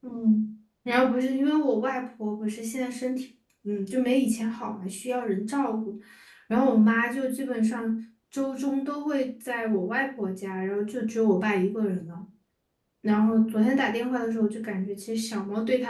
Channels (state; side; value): identical; both; correlation 1.00